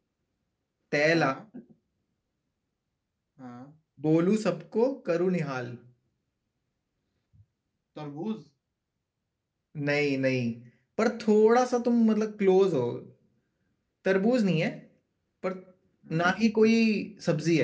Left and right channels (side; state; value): both; identical; correlation 1.00